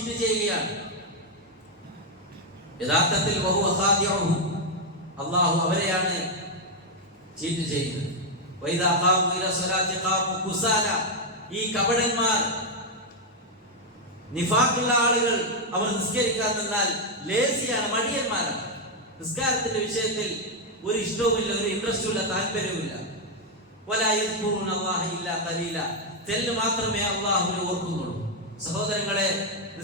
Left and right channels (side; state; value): both; normal; correlation 0.01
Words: ചെയ്യുകയാണ്. യഥാർത്ഥത്തിൽ വഹുവ ഖാദിഉഹു, അല്ലാഹു അവരെയാണ് ചീറ്റ് ചെയ്യുന്നത്. വൈദാ ഖാമു ഇലാ സ്വലാത്തി ഖാമു കുസാല, ഈ കപടന്മാർ, നിഫാഖുള്ള ആളുകൾ, അവർ നിസ്കരിക്കാൻ നിന്നാൽ ലേസിയാണ്, മടിയന്മാരാണ്. നിസ്കാരത്തിന്റെ വിഷയത്തിൽ ഒരു ഇഷ്ടവുമില്ല, ഒരു ഇൻട്രസ്റ്റുമില്ല, താല്പര്യവുമില്ല. വലാ യദ്കുറുന അല്ലാഹ ഇല്ലാ ഖലീല, തെല്ല് മാത്രമേ അല്ലാഹുവിനെ ഓർക്കുന്നുള്ളൂ. സഹോദരങ്ങളെ,